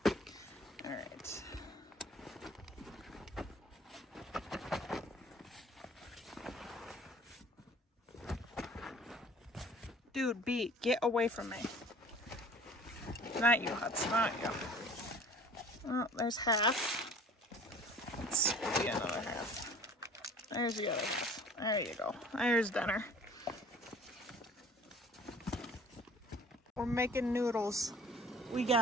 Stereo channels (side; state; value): both; normal; correlation 0.49